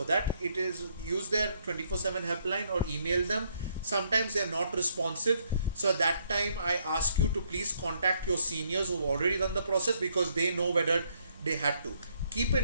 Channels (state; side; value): inverted; both; correlation -0.71